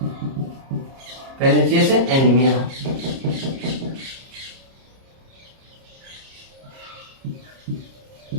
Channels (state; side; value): late; left; 30 ms